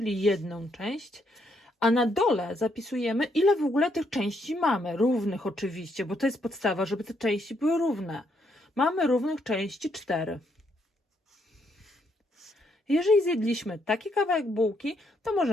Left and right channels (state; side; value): normal; both; correlation 0.74